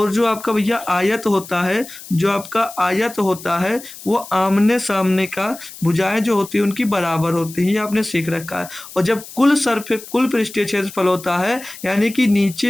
जो आपका भैया आयत होता है, जो आपका आयत होता है वो आमने सामने का भुजाएं जो होती है उनकी बराबर होती हैं, ये आपने सीख रखा है। और जब कुल पृष्ठीय क्षेत्रफल होता है यानी कि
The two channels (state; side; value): noise; left; hiss, 16 dB below the sound